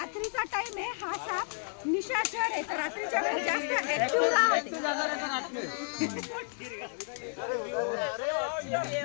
टाइम आहे. हा साप निशाचर आहे, तर रात्रीच्या वेळेस जास्त ऍक्टिव्ह राहते.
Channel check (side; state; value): right; silent; 57 dB below the other